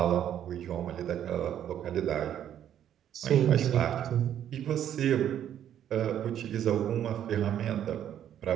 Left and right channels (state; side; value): quieter; left; 10.3 dB